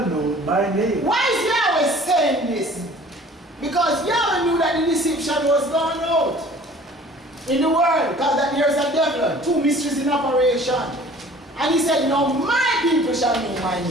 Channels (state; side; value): normal; both; correlation 0.49